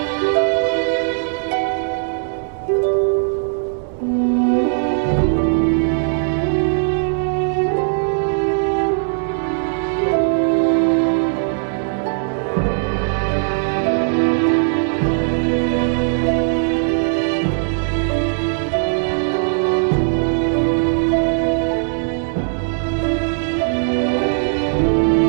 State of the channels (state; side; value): silent; left; digital silence